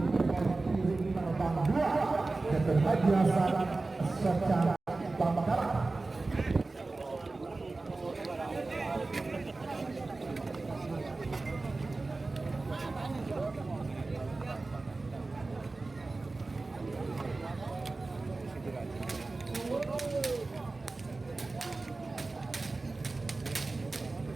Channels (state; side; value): quieter; left; 3.4 dB